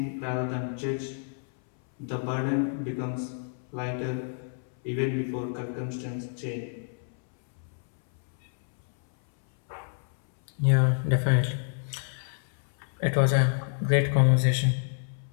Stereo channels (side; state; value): right; silent; 59 dB below the other